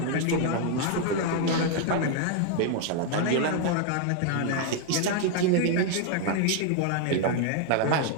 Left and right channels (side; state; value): both; different; correlation 0.00